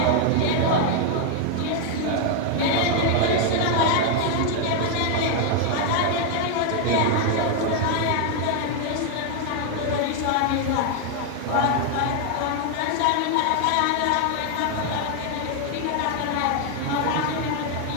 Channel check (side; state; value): both; different; correlation 0.00